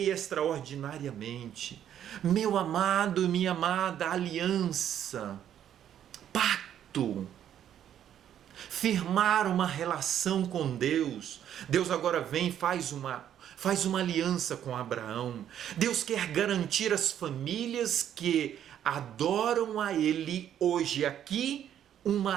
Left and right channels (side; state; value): left; quieter; 10.2 dB